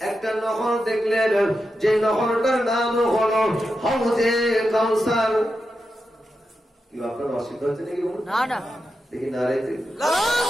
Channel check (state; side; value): normal; both; correlation 0.88